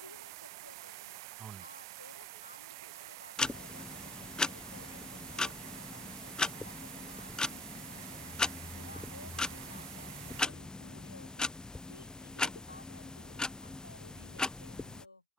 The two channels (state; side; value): normal; both; correlation 0.50